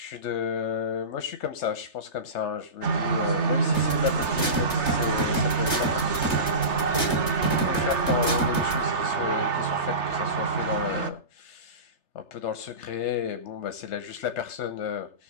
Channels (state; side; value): late; right; 3.3 ms